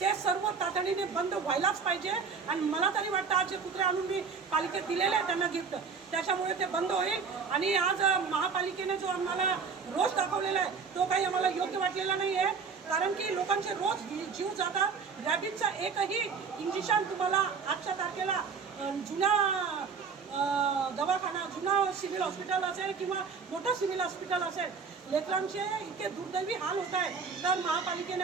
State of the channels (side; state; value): left; quieter; 5.5 dB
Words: ते सर्व तातडीने बंद व्हायलाच पाहिजे। आणि मला तरी वाटतं आज जे कुत्रे आणून मी पालिकेत दिलेले आहे त्यांना गिफ्ट, त्याच्यामुळे ते बंद होईल। आणि आज महापालिकेने जो आम्हाला रोष दाखवलेला आहे तो काही आम्हाला योग्य वाटलेला नाही आहे, कारण की लोकांचे रोज जीव जातात। रॅबिजचा एकही इंजेक्शन तुम्हाला आजच्या तारखेला जुन्या दवाखाना, जुना सिव्हिल हॉस्पिटल असेल किंवा मोठं सिव्हिल हॉस्पिटल असेल, लेकरांचे इतके दुर्दैवी हाल होत आहे। तर